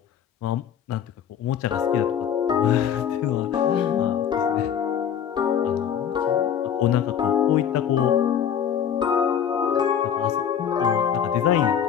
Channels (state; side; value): quieter; right; 8.6 dB